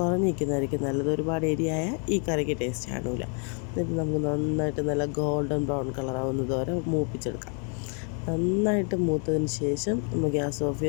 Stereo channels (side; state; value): right; quieter; 40.0 dB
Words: നല്ലത്. ഒരുപാട് എരിയായ ഈ കറിക്ക് ടേസ്റ്റ് കാണില്ല. എന്നിട്ട് നമുക്ക് നന്നായിട്ട് നല്ല ഗോൾഡൻ ബ്രൗൺ കളറാവുന്നത് വരെ മൂപ്പിച്ചെടുക്കാം. നന്നായിട്ട് മൂത്തതിന് ശേഷം നമ്മൾ ഗ്യാസ് ഓഫ്